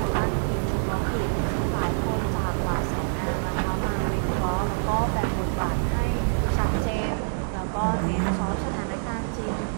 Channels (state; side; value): silent; left; 61 dB below the other